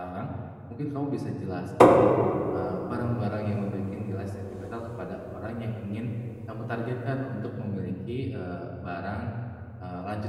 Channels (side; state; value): both; identical; correlation 1.00